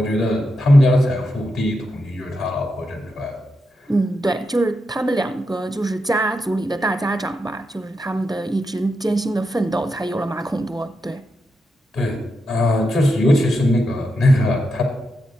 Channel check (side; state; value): both; normal; correlation 0.86